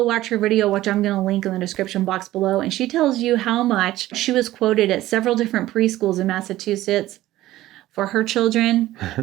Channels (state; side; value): quieter; left; 15.5 dB